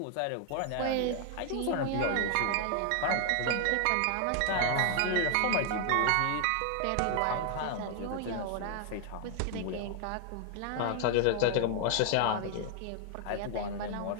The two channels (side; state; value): both; different; correlation 0.00